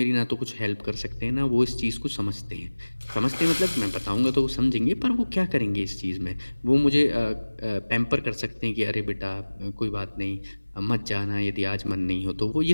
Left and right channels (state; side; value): inverted; both; correlation -1.00